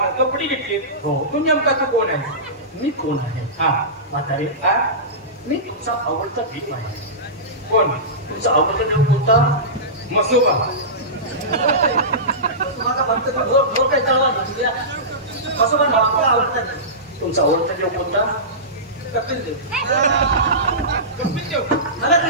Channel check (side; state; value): both; normal; correlation -0.20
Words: कपडे घेतली. तू नेमका तू कोण आहे? मी कोण आहे? हा म्हातारे मी तुमचा आवडता देव आहे. कोण? तुमचा आवडता देव कोणता? मसोबा. तुमचा आवडता देव कोणता? कपिल देव. कपिल देव मला